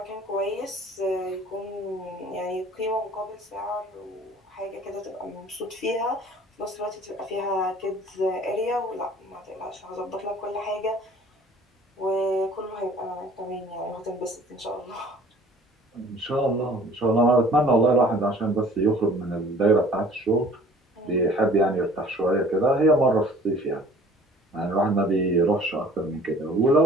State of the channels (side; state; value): both; normal; correlation 0.51